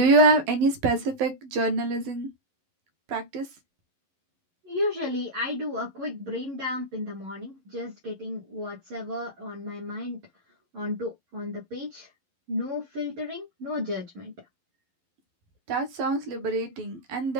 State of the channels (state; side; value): late; left; 11 ms